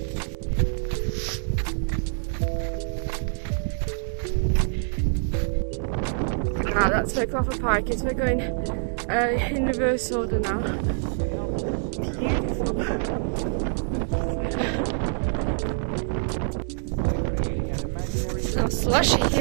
Ah, that's where Clougha Pike is. We're going in reverse order now. Beautiful. It's so slushy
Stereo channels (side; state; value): left; silent; 61 dB below the other